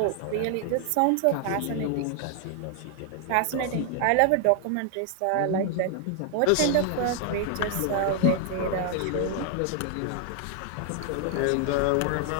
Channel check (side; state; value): both; different; correlation 0.00